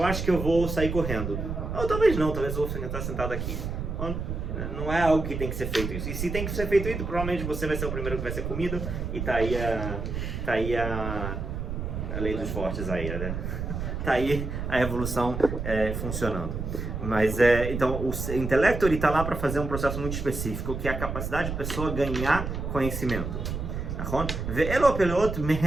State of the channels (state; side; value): noise; right; rumble, 4 dB below the sound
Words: acho que eu vou sair correndo. Ou talvez não, talvez eu vou estar sentado aqui. Não é algo que tem que ser feito isso. E se tem que ser feito isso, provavelmente você vai ser o primeiro que vai ser comido. E tá aí a lei dos fortes aí, né? Tá aí a evolução funcionando. Mas então o intelecto ele está lá para fazer um processo muito específico, que é a capacidade da pessoa ganhar conhecimento.